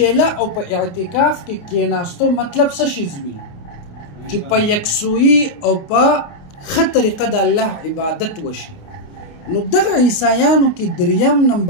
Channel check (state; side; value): late; right; 28 ms